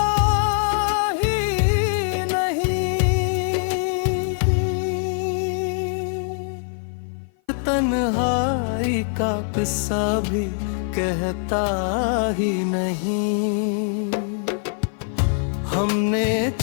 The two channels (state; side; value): silent; right; 55 dB below the other